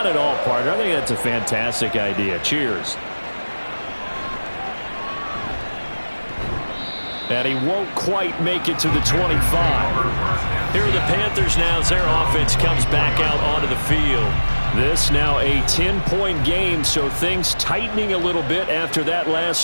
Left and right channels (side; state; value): both; inverted; correlation -1.00